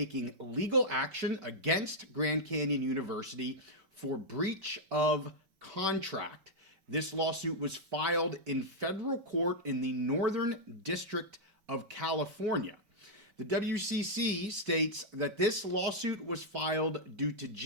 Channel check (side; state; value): left; late; 5.3 ms